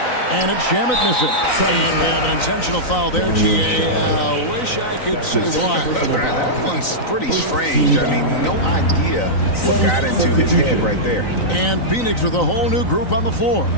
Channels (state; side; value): late; right; 3.9 ms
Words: And it's Shamet missing. And we have an intentional foul there, G.A. Wish I could say why. That one's pretty strange. I mean, no idea what got into his head right there. And Phoenix with a whole new group on the floor.